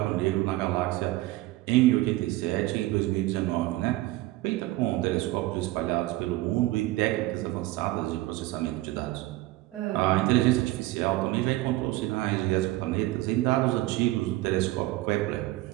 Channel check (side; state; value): left; quieter; 18.0 dB